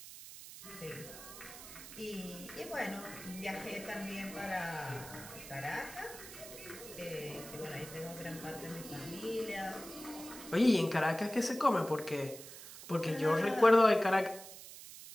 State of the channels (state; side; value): noise; right; hiss, 14 dB below the sound